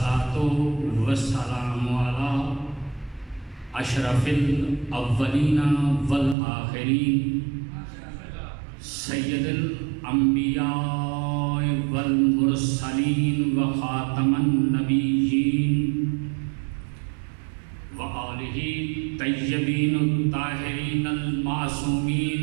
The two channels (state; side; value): drops out; left; at 6.4 s